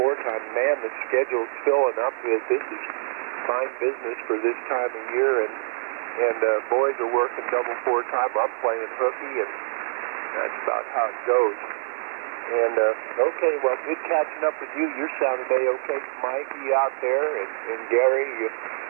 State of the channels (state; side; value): silent; left; digital silence